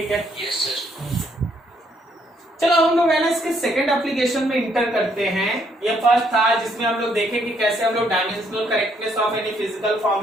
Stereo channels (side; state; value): both; normal; correlation 0.70